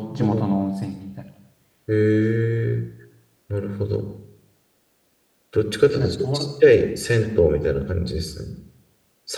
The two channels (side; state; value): both; identical; correlation 1.00